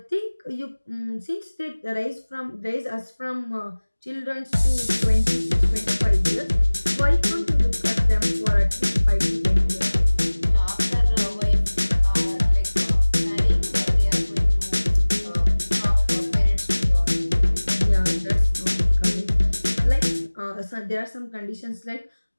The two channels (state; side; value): inverted; both; correlation -1.00